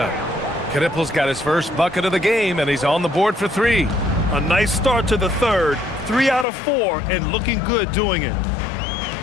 Knipple's got his first bucket of the game, and he's on the board for 3. A nice start to the third. 3 out of 4, and looking good doing it.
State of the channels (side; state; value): right; drops out; at 6.5 s